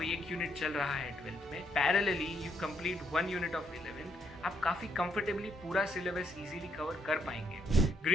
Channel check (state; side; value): normal; both; correlation 0.73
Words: एक यूनिट चल रहा है 12th में, parallelly you complete 1 unit of 11th, आप काफी कंफर्टेबली पूरा सिलेबस इजीली कवर कर पाएंगे।